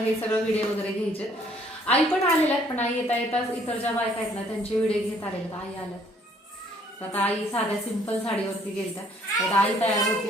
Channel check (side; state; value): both; normal; correlation 0.62